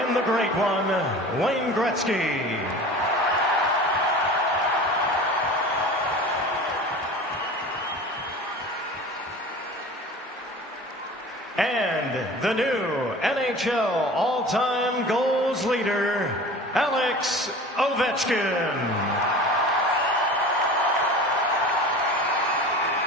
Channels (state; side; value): normal; both; correlation 0.38